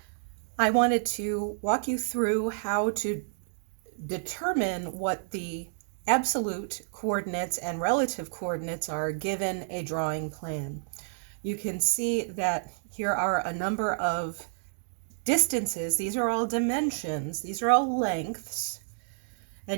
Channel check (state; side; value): silent; left; digital silence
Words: I wanted to walk you through how to determine what the absolute coordinates and relative coordinates are given a drawing plan. You can see that here are a number of distances. These are all dimensions. These are all lengths.